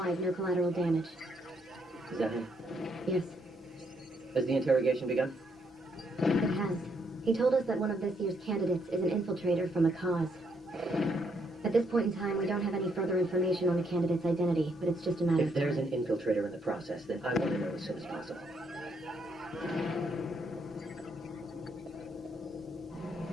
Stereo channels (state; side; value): normal; both; correlation 0.74